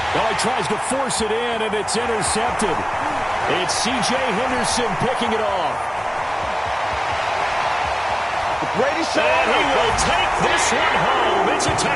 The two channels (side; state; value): both; identical; correlation 1.00